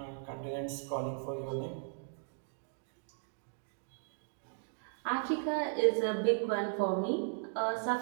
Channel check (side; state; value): left; silent; digital silence